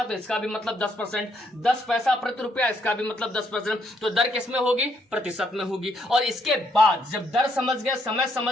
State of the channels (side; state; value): both; normal; correlation 0.73